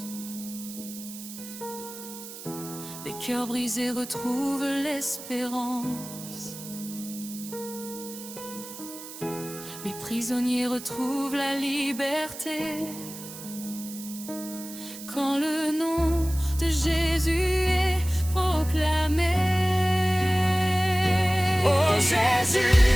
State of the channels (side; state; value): right; noise; hiss, 13 dB below the sound